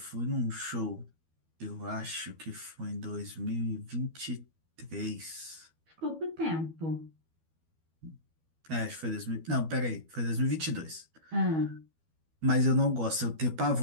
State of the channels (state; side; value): late; left; 12 ms